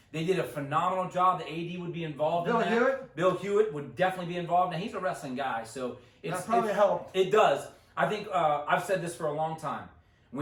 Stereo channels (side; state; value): both; identical; correlation 1.00